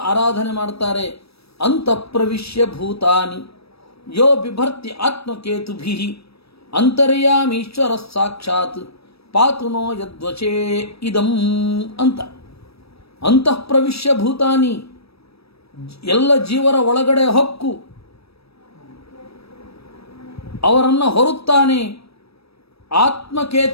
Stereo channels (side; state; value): right; late; 0.78 ms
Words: ಆರಾಧನೆ ಮಾಡ್ತಾರೆ. ಅಂತಃಪ್ರವಿಶ್ಯ ಭೂತಾನಿ ಯೋ ಬಿಭರ್ತಿ ಆತ್ಮಕೇತುಭಿ ಅಂತರ್ಯಾಮೀಶ್ವರ ಸಾಕ್ಷಾತ್ ಪಾತುನೋ ಯದ್ವಚೇ ಇದಂ ಅಂತ. ಅಂತಃಪ್ರವಿಶ್ಯ ಭೂತಾನಿ, ಎಲ್ಲ ಜೀವರ ಒಳಗಡೆ ಹೊಕ್ಕು ಅವರನ್ನು ಹೊರುತ್ತಾನೆ.